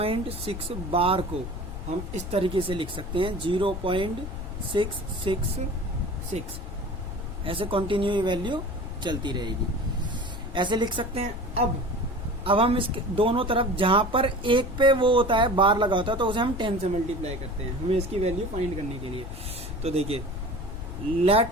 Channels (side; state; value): left; noise; rumble, 8 dB below the sound